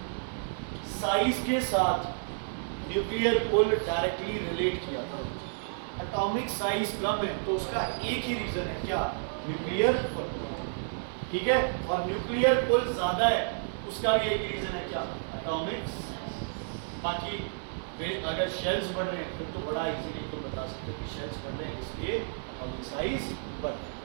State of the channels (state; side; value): silent; left; digital silence